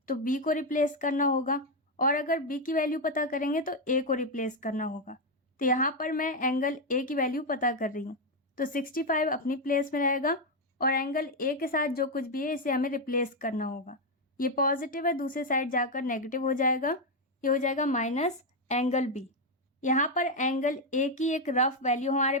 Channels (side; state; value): both; normal; correlation 0.04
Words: तो B को रिप्लेस करना होगा और अगर B की वैल्यू पता करेंगे तो A को रिप्लेस करना होगा। तो यहाँ पर मैं एंगल A की वैल्यू पता कर रही हूँ तो 65 अपनी प्लेस में रहेगा और एंगल A के साथ जो कुछ भी है इसे हमें रिप्लेस करना होगा। ये पॉजिटिव है, दूसरे साइड जाकर नेगेटिव हो जाएगा, ये हो जाएगा माइनस एंगल B। यहाँ पर एंगल A की एक रफ वैल्यू हमारे